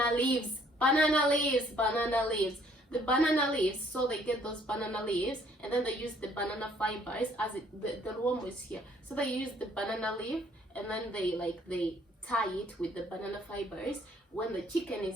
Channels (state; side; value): normal; both; correlation 0.62